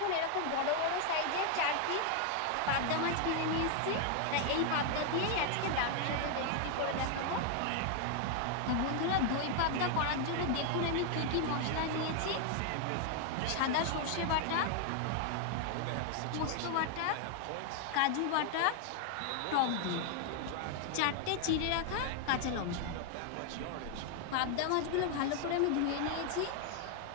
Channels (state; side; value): different; both; correlation 0.00